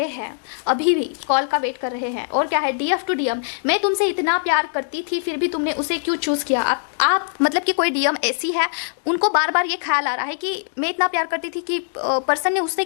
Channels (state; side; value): silent; right; digital silence